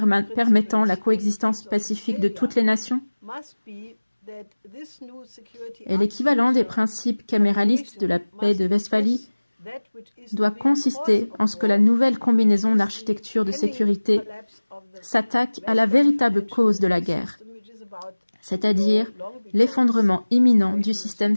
la coexistence pacifique de toutes les nations? Et l'équivalent des principes caméralistes de la paix de Westphalie doit consister en ce que la nouvelle combinaison d'architecture de sécurité s'attaque à la véritable cause de la guerre, c'est-à-dire l'effondrement imminent du système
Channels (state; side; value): inverted; both; correlation -1.00